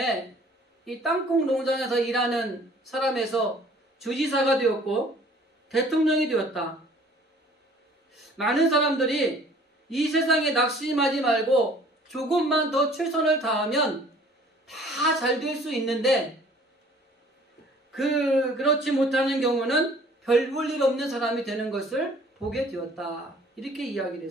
이 땅콩 농장에서 일하는 사람에서 주지사가 되었고 대통령이 되었다. 많은 사람들이 이 세상에 낙심하지 말고 조금만 더 최선을 다하면 다 잘 될 수 있는데 그렇지 못하는 경우는 별 볼 일 없는 사람이 되는 것을 보게 되었다. 이렇게 이야기를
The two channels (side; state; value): both; normal; correlation 0.53